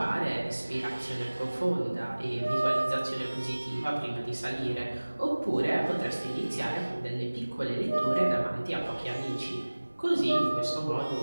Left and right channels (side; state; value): both; inverted; correlation -1.00